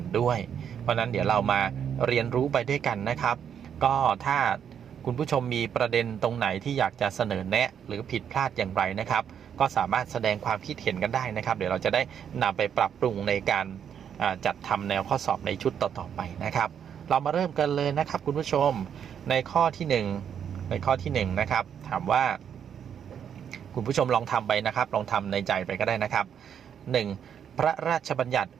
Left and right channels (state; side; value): quieter; left; 8.4 dB